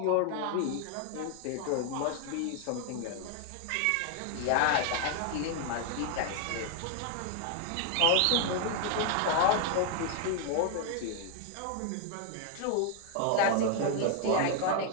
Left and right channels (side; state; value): both; different; correlation 0.00